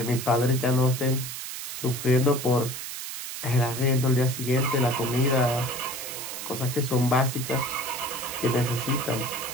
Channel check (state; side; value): noise; right; hiss, 7 dB below the sound